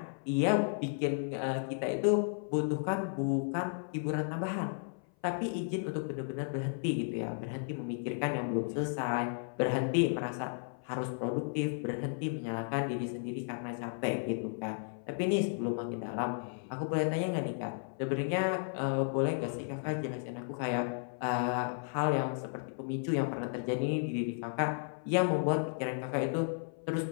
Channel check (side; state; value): right; silent; 55 dB below the other